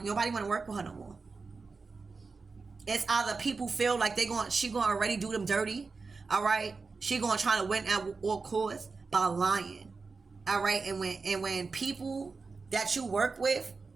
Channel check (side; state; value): left; quieter; 4.4 dB